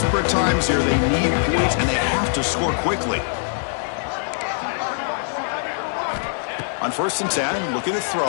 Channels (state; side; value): silent; right; digital silence